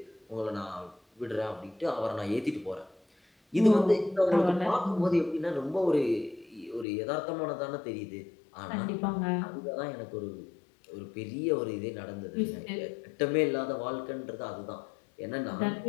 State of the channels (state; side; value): drops out; right; at 6.9 s